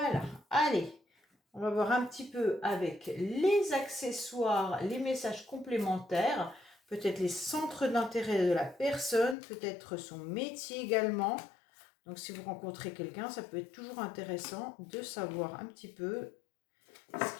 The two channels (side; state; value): right; drops out; at 9.3 s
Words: allez, on va voir un petit peu avec les accessoires, les messages complémentaires, peut-être les centres d'intérêt de la personne, peut-être son métier également. Donc, si vous rencontrez quelqu'un, ça peut être toujours intéressant de savoir un petit peu